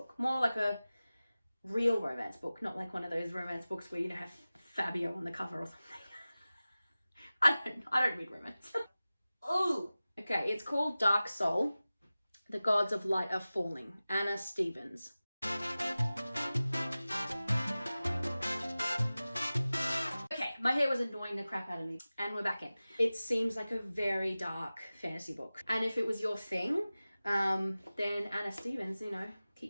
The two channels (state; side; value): inverted; both; correlation -0.97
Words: More like a real romance book. Not like one of those romance books where you have Fabio on the cover or something. I don't read romance. Oh. Okay, it's called Dark Soul. The Gods of Light Are Falling. Anna Stevens. My hair was annoying the crap out of me, and we're back in. It seems like a very dark fantasy book, and if it was your thing, then Anna Stevens, you know,